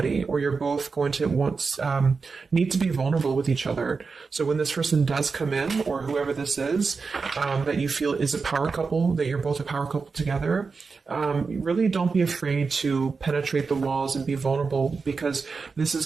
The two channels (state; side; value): quieter; left; 4.7 dB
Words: or you're both going to need to be vulnerable with each other. So when this person does come in, or whoever this is, that you feel is a power couple, that you're both a power couple together, really don't be afraid to penetrate the walls and be vulnerable, because this is